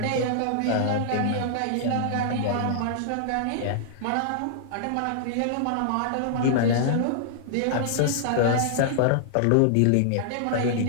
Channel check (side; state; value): both; different; correlation -0.01